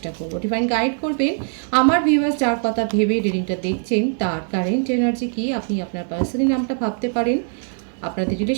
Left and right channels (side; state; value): left; silent; 56 dB below the other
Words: করব। ডিভাইন গাইড করবেন আমার ভিউয়ার্স যার কথা ভেবে রিডিংটা দেখছেন তার কারেন্ট এনার্জি কি। আপনি আপনার পার্সনের নামটা ভাবতে পারেন, আপনাদের